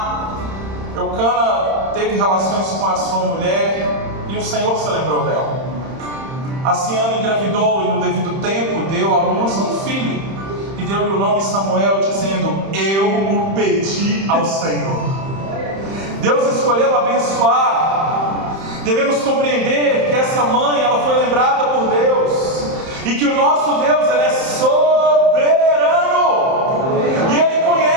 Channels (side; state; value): left; late; 31 ms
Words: Eucana teve relações com a sua mulher e o Senhor se lembrou dela. Assim Ana engravidou e no devido tempo deu à luz um filho e deu-lhe o nome Samuel, dizendo: eu o pedi ao Senhor. Deus escolheu abençoar. Devemos compreender que essa mãe, ela foi lembrada por Deus, e que o nosso Deus, ele é soberano, e Ele